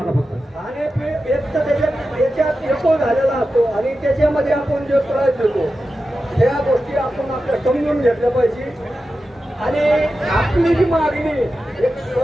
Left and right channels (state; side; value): normal; both; correlation 0.92